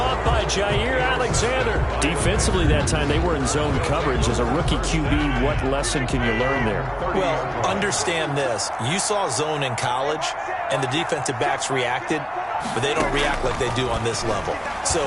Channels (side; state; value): both; identical; correlation 1.00